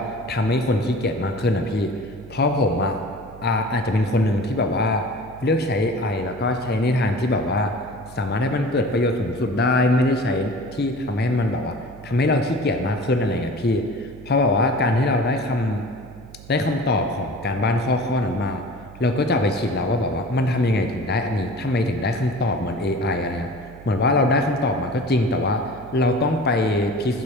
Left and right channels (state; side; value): noise; right; hum, 18 dB below the sound